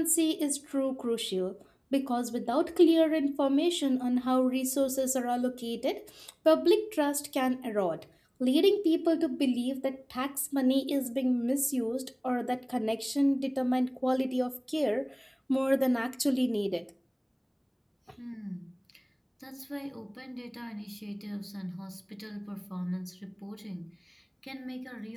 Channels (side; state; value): both; identical; correlation 1.00